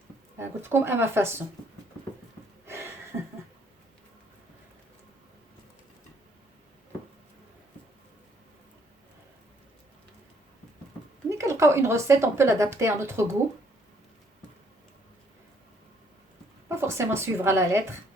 قلت لكم اما فاسون. ملي كنلقاو اون غوسيت اون بو لادابتي ا نوتر غو، با فورسيمون سويفر لا لتر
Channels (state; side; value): normal; both; correlation 0.66